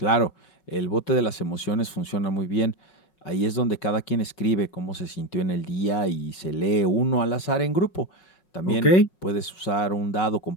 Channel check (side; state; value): right; late; 5.2 ms